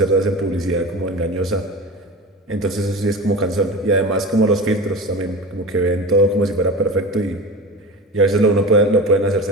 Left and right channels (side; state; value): both; normal; correlation 0.31